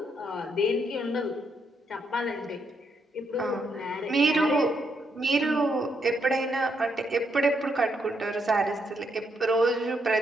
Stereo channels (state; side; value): normal; both; correlation 0.77